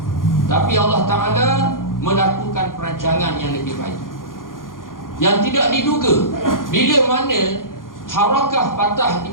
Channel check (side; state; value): right; late; 0.90 ms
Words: Tapi Allah Ta'ala melakukan perancangan yang lebih baik, yang tidak diduga. Bila mana harakah Fatah di